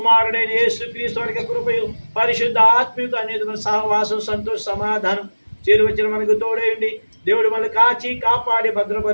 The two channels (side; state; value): both; inverted; correlation -1.00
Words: యేసు క్రీస్తు వారి కృపయు, పరిశుద్ధ ఆత్మీయత అనేది సహవాసం, సంతోష, సమాధానం చేరు వచ్చిన మనకు తోడేయండి. దేవుడు మనల్ని కాచి కాపాడి